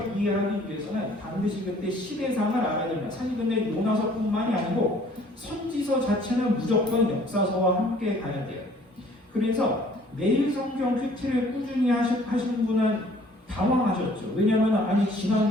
이해하기 위해서는 반드시 그때 시대상을 알아야 됩니다. 사실 근데 요나서뿐만이 아니고 선지서 자체는 무조건 역사서와 함께 가야 돼요. 그래서 매일 성경 큐티를 꾸준히 하신 분은 당황하셨죠. 왜냐하면 아니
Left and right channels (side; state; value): both; normal; correlation 0.56